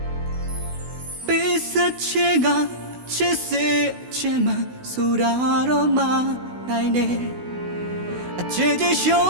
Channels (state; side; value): late; left; 16 ms